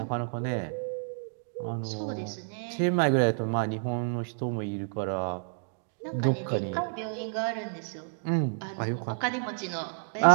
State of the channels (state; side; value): silent; left; digital silence